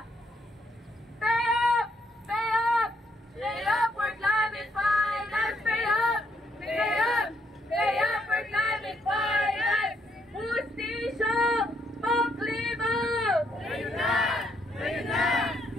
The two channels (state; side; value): normal; both; correlation 0.73